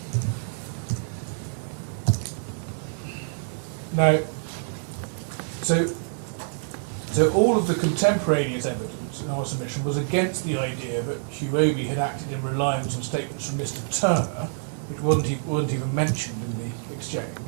Now, so all of the contemporaneous evidence evidence in our submission was against the idea that Huobi had acted in reliance on statements from Mr. Turner, which wasn't even mentioned in the exchange,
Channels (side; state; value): left; silent; 61 dB below the other